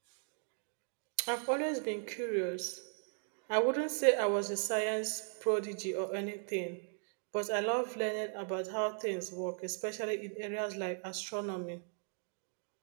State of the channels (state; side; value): silent; left; 53 dB below the other